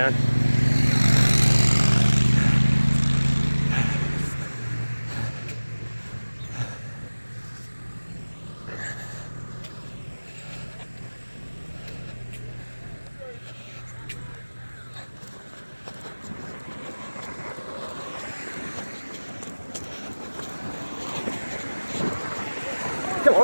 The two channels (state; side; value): inverted; both; correlation -1.00